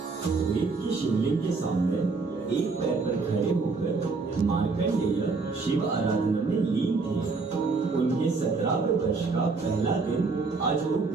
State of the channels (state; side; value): quieter; left; 4.2 dB